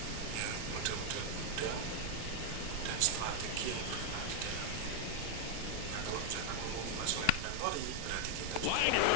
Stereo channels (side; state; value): both; different; correlation 0.00